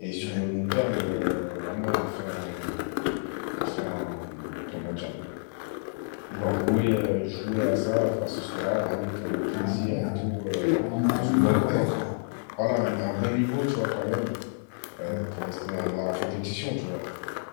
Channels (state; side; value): silent; right; digital silence